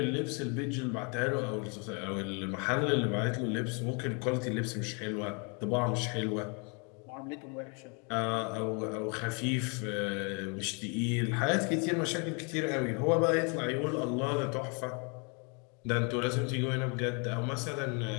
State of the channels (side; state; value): right; quieter; 34.5 dB